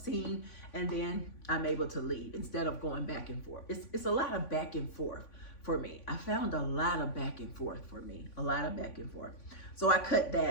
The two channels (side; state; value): right; late; 3.5 ms